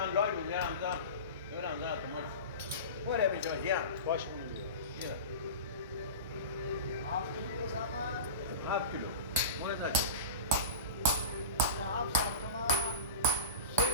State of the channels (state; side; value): inverted; both; correlation -0.31